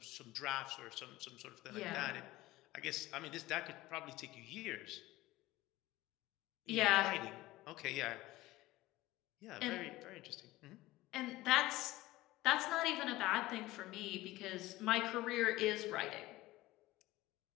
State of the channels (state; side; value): quieter; right; 18.0 dB